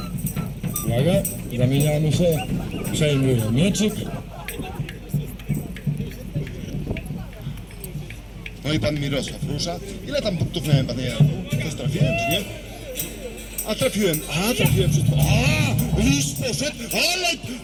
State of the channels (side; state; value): both; identical; correlation 1.00